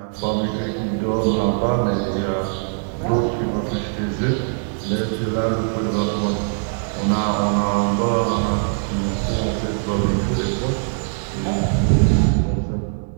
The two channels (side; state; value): left; silent; 62 dB below the other